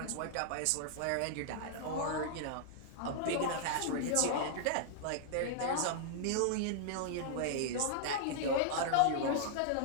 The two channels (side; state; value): both; different; correlation -0.01